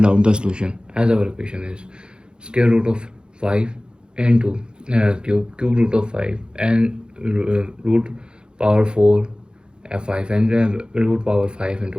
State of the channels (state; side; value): late; left; 0.049 ms